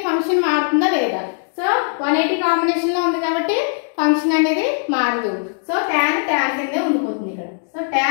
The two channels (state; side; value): silent; right; digital silence